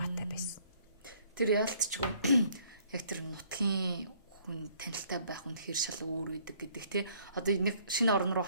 байсан. Тэр яалтчгүй яг тэр нутгийн хүн танилтай байх үнэхээр шал өөр үүдэг гэдэг тий. Одоо нэг шинэ орн руу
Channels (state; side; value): inverted; both; correlation -0.62